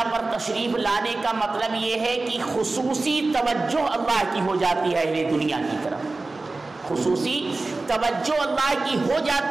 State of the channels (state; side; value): quieter; left; 3.4 dB